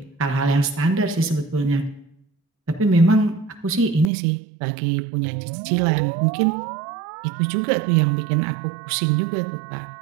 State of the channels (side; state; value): left; drops out; at 4.1 s